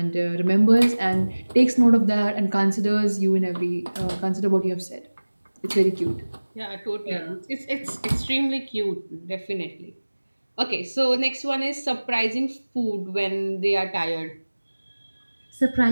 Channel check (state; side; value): inverted; both; correlation -1.00